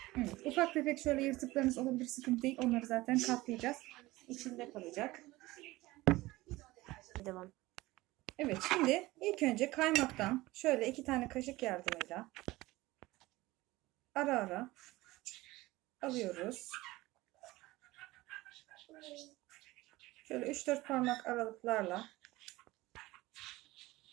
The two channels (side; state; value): left; quieter; 19.2 dB